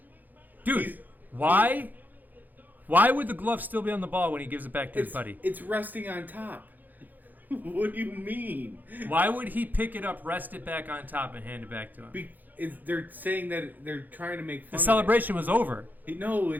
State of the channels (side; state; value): left; late; 0.085 ms